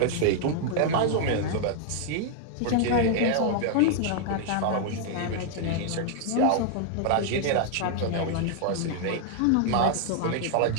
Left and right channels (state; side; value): different; both; correlation 0.00